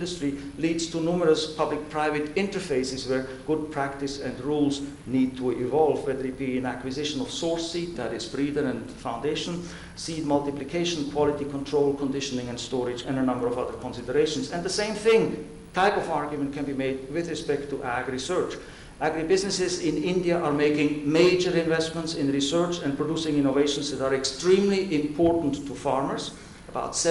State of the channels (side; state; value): both; identical; correlation 1.00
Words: leads to numerous public-private interfaces where good practice and rules need to evolve, whether it be in acquisition of source seed, that is breeder and foundation, seed multiplication, quality control, conditioning and storage, and a number of other considerations. And the same type of argument can be made with respect to ag-research. Agribusinesses in India are making major investments in research and producing innovations that are extremely important to farmers. About